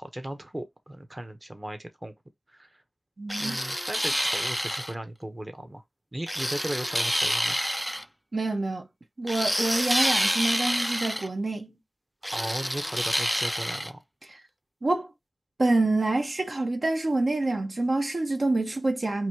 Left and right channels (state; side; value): normal; both; correlation 0.98